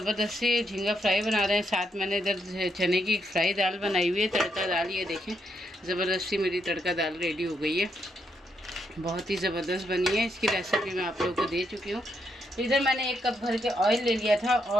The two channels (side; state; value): both; normal; correlation 0.78